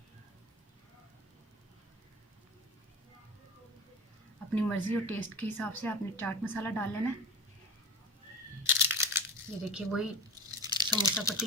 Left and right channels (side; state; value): both; normal; correlation 0.29